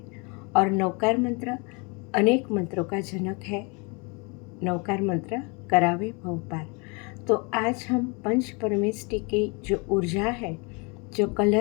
और नवकार मंत्र अनेक मंत्रों का जनक है। नवकार मंत्र करावे भव पार। तो आज हम पंच परमेष्टि की जो ऊर्जा है, जो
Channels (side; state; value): right; quieter; 31.0 dB